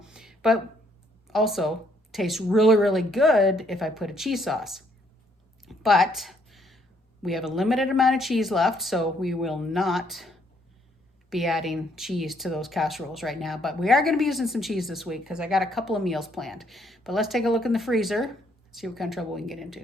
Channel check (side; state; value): both; normal; correlation 0.69